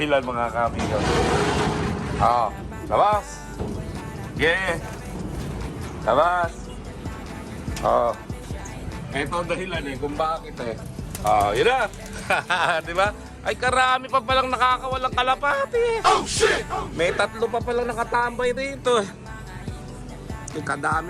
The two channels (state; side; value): identical; both; correlation 1.00